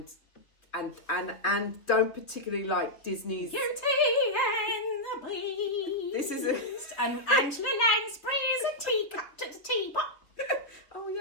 don't particularly like Disney's Beauty and the Beast. This is and Angela Lansbury's a teacup to the teapot. Oh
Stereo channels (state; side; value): late; right; 3.1 ms